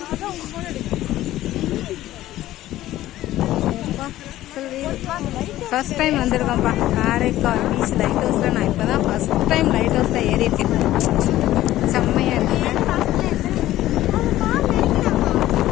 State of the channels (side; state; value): right; quieter; 14.7 dB